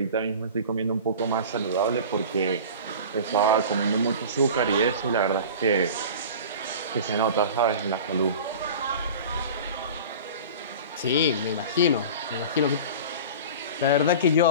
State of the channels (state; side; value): inverted; both; correlation -0.36